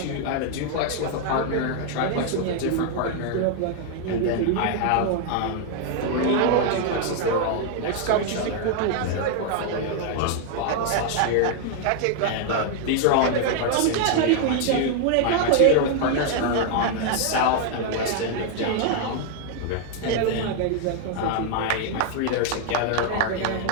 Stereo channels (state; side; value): different; both; correlation 0.00